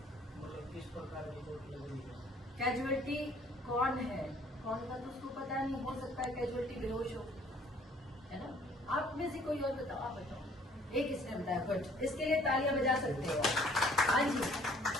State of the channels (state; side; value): normal; both; correlation 0.58